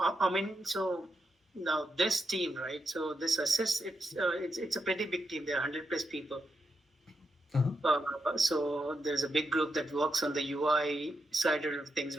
I mean, so now this team, right? So this assist, it's a pretty big team. There are 100 plus people. Uh-huh. So there's a big group that works on the UI side of things,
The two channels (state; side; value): normal; both; correlation 0.83